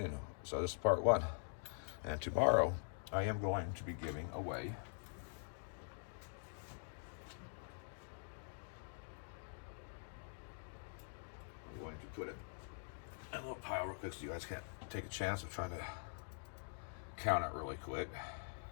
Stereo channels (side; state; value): right; silent; digital silence